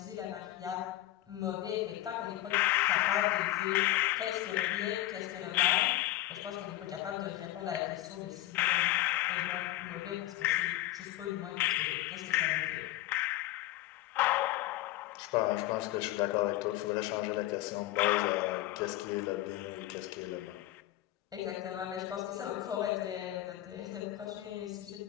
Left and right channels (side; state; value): right; quieter; 15.7 dB